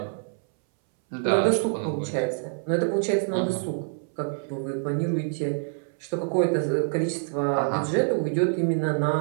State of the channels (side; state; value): left; silent; 61 dB below the other